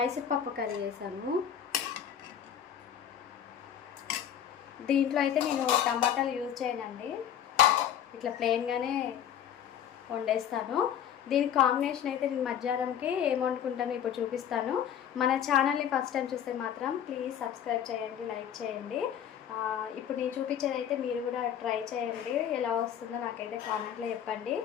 పప్పు కర్రీ చేశాను. దీంట్లో అయితే నేను టమాటాలు యూజ్ చేయనండి, ఇట్లా ప్లెయిన్గానే వండేస్తాను. దీనికి కాంబినేషన్ అయితే నేను మధ్యాహ్నంకి ఏం వండుకుంటానో ఇప్పుడు చూపిస్తాను. మన ఛానల్ని ఫస్ట్ టైం చూస్తే మాత్రం ప్లీజ్ సబ్స్క్రైబ్ చేయండి, లైక్ చేయండి. ఇప్పుడు నేను చూపించేది అయితే మీరు కూడా ట్రై చేయండి, ఎలా వస్తుందో నాకైతే కామెంట్లో చెప్పండి.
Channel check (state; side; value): quieter; right; 9.4 dB